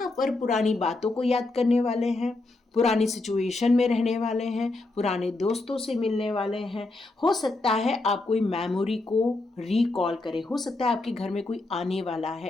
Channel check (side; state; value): right; quieter; 3.1 dB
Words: पर पुरानी बातों को याद करने वाले हैं, पुरानी सिचुएशन में रहने वाले हैं, पुराने दोस्तों से मिलने वाले हैं। हो सकता है आप कोई मेमोरी को रिकॉल करें, हो सकता है आपके घर में कोई आने वाला